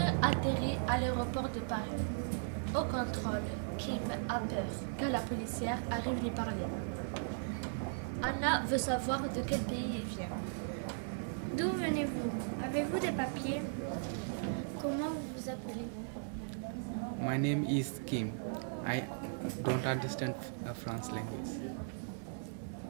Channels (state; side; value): silent; left; digital silence